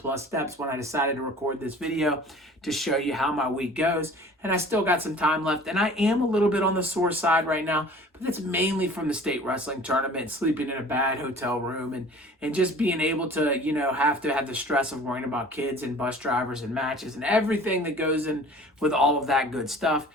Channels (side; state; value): both; normal; correlation 0.46